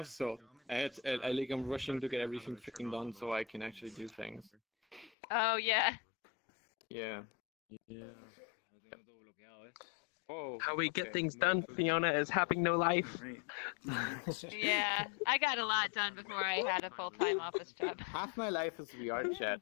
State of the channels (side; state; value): right; drops out; at 5.1 s